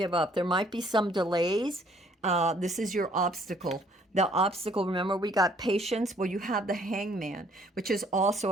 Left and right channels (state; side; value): normal; both; correlation 0.62